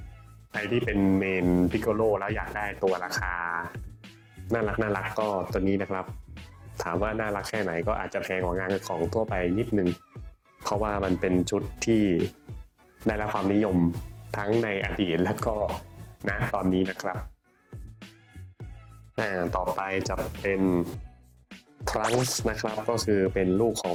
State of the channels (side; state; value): both; identical; correlation 1.00